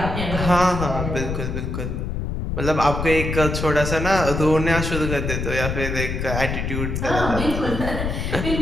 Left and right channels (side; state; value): left; noise; rumble, 3 dB below the sound